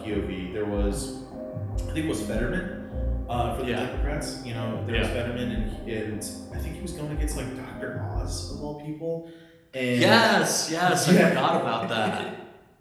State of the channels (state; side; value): identical; both; correlation 1.00